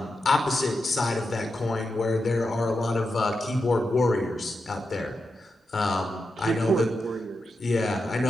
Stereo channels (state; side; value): normal; both; correlation 0.88